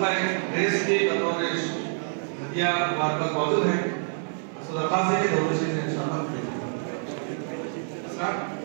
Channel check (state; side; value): silent; left; digital silence